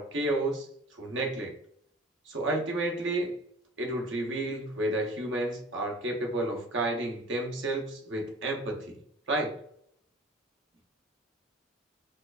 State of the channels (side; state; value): both; normal; correlation 0.44